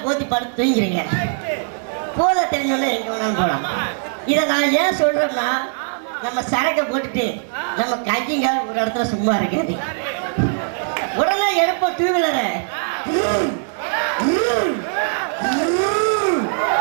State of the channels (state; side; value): silent; left; 65 dB below the other